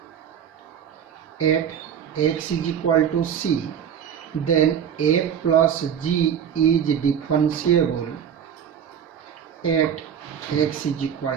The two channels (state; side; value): quieter; left; 8.4 dB